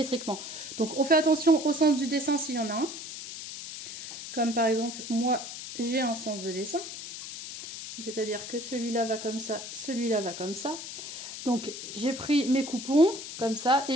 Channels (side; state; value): left; noise; hiss, 9 dB below the sound